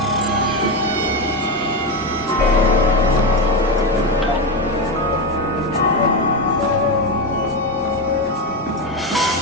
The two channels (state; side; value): normal; both; correlation 0.13